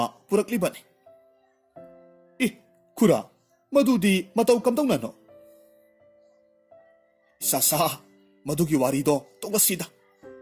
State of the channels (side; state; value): both; identical; correlation 1.00